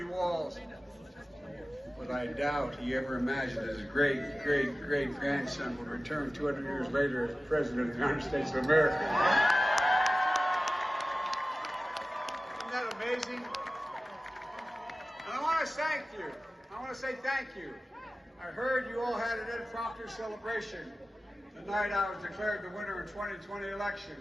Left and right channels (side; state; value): both; normal; correlation 0.96